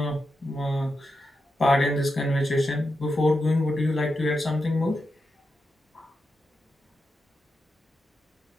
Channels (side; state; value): both; normal; correlation 0.87